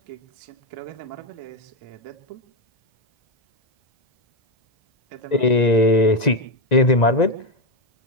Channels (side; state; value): right; late; 1.9 ms